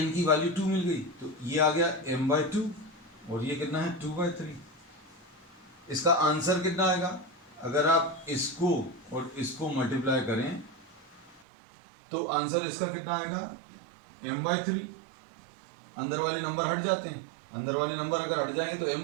की वैल्यू 2 मिल गई तो ये आ गया m/2 और ये कितना है 2/3। इसका आंसर कितना आएगा, अगर आप इसको और इसको मल्टीप्लाई करें तो आंसर इसका कितना आएगा m/3। अंदर वाले नंबर हट जाते हैं, अंदर वाले नंबर अगर हट जाएंगे तो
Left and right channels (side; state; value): left; drops out; at 11.5 s